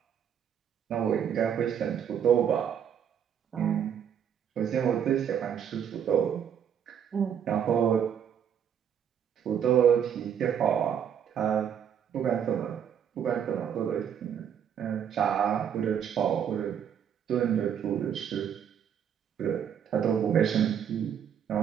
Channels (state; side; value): quieter; left; 8.6 dB